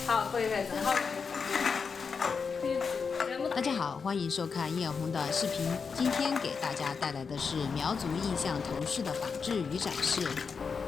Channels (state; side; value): quieter; right; 5.5 dB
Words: 好，可以，正好。可以这么。大家好，欢迎收看叶红的视频。今天给大家带来的是苗族印象头饰的仿制与展示。